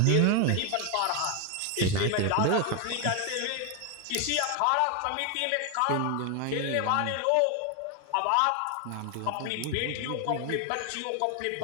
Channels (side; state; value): both; different; correlation 0.01